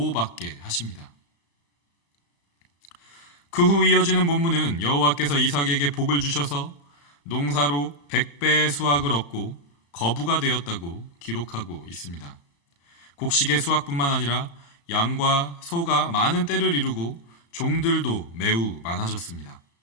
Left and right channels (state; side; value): late; right; 35 ms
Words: 하십니다. 그 후 이어지는 본문은 여호와께서 이삭에게 복을 주셔서 농사로 100배의 수확을 얻고 거부가 되었다고 기록하고 있습니다. 곡식의 수확뿐만 아니라 양과 소가 많은 떼를 이루고 종들도 매우 많아졌습니다.